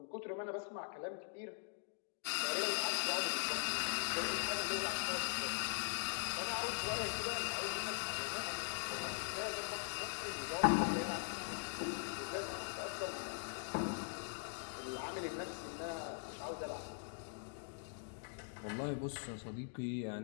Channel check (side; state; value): right; silent; digital silence